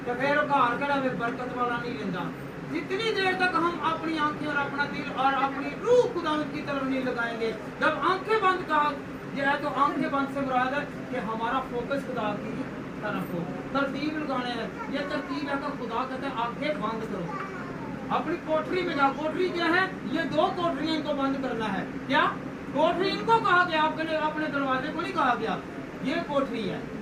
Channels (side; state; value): both; identical; correlation 1.00